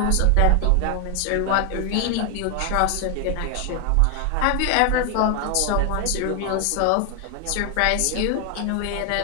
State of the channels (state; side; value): different; both; correlation 0.00